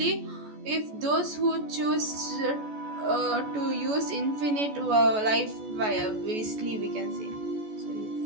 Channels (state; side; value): late; left; 14 ms